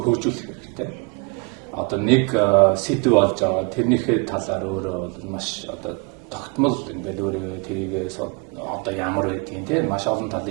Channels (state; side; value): quieter; left; 31.0 dB